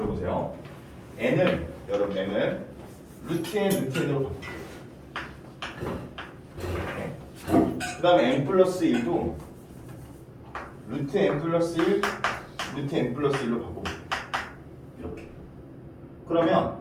n을 여러분 n을 루트 n 루트 n으로 바꿔. 그 다음에 n 플러스 1도 루트 n 플러스 1 루트 n 플러스 1로 바꿔볼게요. 이렇게. 그러면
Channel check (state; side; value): identical; both; correlation 1.00